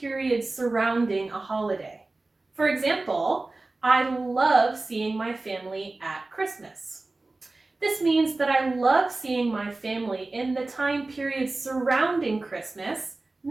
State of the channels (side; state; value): left; quieter; 3.2 dB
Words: surrounding a holiday. For example, I love seeing my family at Christmas. This means that I love seeing my family in the time period surrounding Christmas,